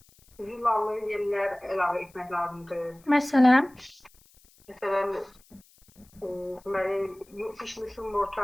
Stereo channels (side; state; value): left; noise; hiss, 29 dB below the sound